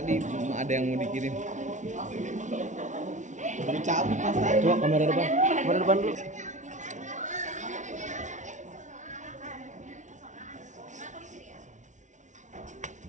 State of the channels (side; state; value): left; late; 0.36 ms